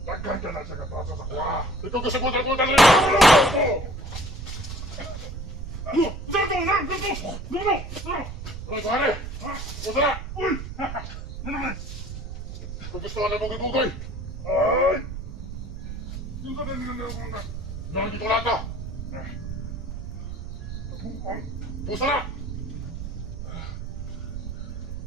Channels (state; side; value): noise; right; rumble, 7 dB below the sound